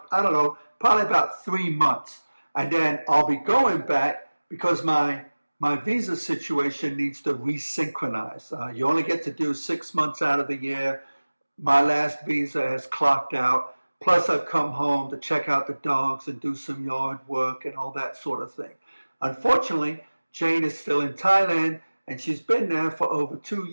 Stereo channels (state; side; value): inverted; both; correlation -1.00